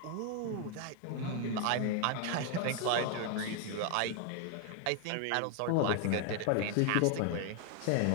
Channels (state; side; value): different; both; correlation 0.00